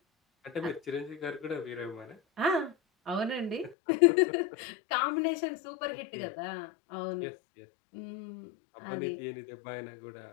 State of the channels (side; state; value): right; drops out; at 3.8 s